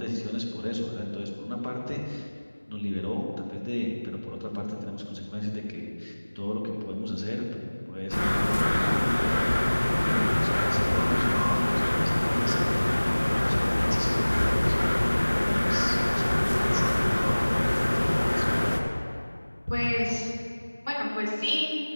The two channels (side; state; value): both; inverted; correlation -1.00